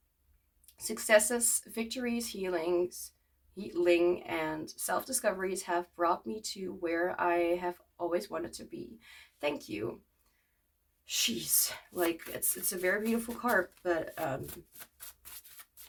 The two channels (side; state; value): both; identical; correlation 1.00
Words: successes, victories, healing, and self-discoveries have brought me to where I have always wanted to be. Thank you. Jeez, like, it's a very beautiful card, but it